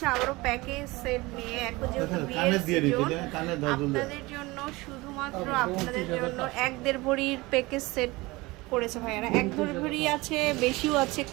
আবারও প্যাকেজ সেট নিয়ে। এখন যেহেতু বিয়ের সিজন, আপনাদের জন্য শুধুমাত্র আপনাদের জন্য 1-1.5 ভরির প্যাকেজ সেট করেছে ভাইয়ারা। 1-1.5 ভরি আছে, বেশিও আছে,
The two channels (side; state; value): left; quieter; 22.0 dB